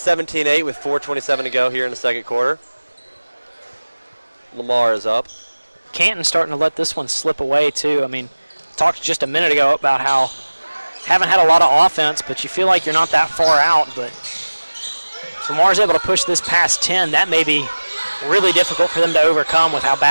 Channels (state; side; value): inverted; both; correlation -1.00